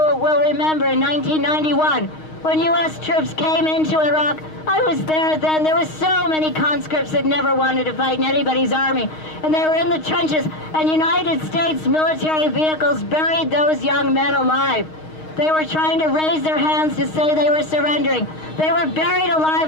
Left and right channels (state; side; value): late; right; 6.4 ms